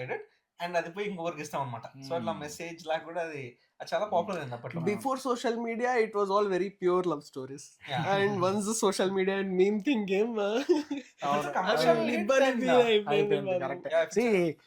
it and అది పోయి ఇంకొకరికి ఇస్తాం అనమాట. సో అట్లా మెసేజ్ లాగా కూడా అది చాలా పాపులర్ అయింది అప్పట్లో. Before social media it was all very pure love stories and once social media and meme thing game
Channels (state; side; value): identical; both; correlation 1.00